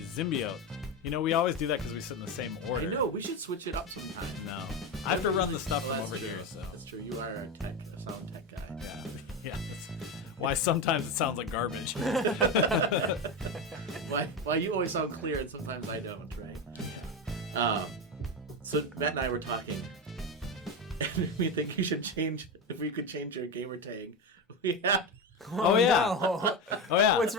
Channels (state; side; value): normal; both; correlation 0.17